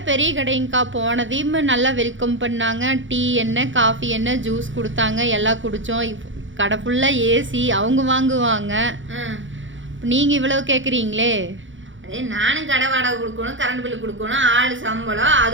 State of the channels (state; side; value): late; left; 0.56 ms